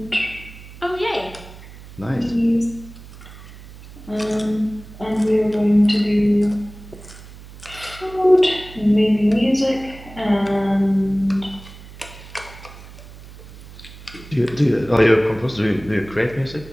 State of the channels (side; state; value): right; noise; hum, 18 dB below the sound